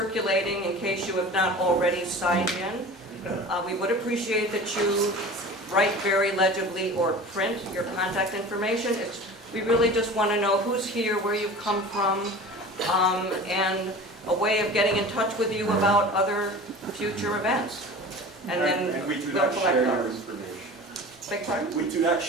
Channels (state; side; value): normal; both; correlation 0.37